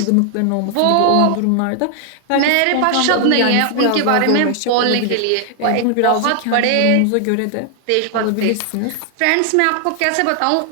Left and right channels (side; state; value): both; different; correlation 0.00